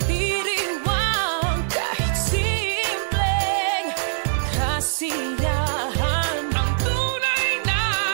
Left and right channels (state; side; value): silent; left; digital silence